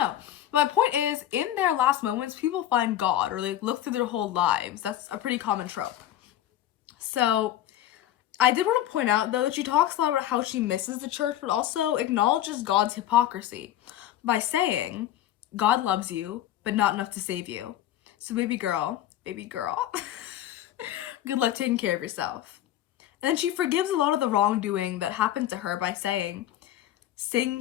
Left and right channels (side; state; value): right; quieter; 12.3 dB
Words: My point is, in their last moments, people find God or like look through their whole lives. That's a pretty common trope. So I did want to point out, though, that she talks a lot about how she misses the church, but also acknowledges God's hypocrisy by saying, God loves you, but not enough to save you. So baby girl, good luck taking care of yourself. And then she forgives a lot of the wrongdoing that happened to her by saying, saying